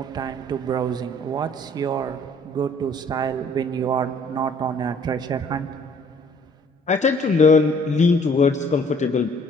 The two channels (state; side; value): normal; both; correlation 0.58